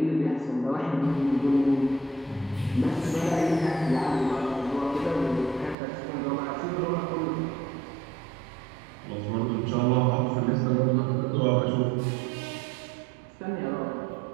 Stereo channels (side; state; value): left; drops out; at 5.8 s